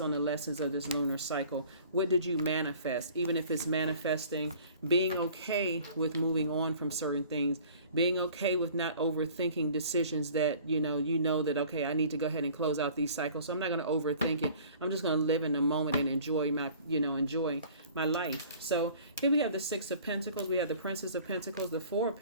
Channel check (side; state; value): both; inverted; correlation -0.49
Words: on the lessons of this lunar cycle. What did you manifest? Even if it's manifesting, being okay with moving on from certain things, being okay with not overthinking decisions that, you know that, okay, I need to go ahead and close out these cycles. So I'm not going to overthink it. I'm just going to live in the moment and enjoy my life. So here we have the Six of Pentacles. We have the Princess of Pentacles, the Four of